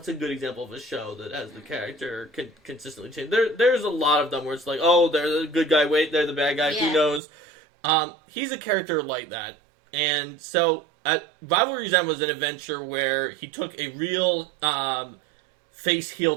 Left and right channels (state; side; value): drops out; left; at 7.2 s